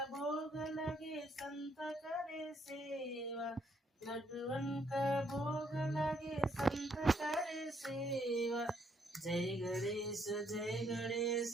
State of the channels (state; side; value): normal; both; correlation 0.71